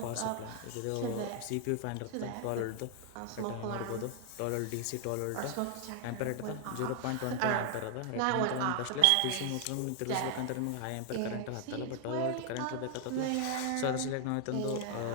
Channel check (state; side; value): different; both; correlation 0.00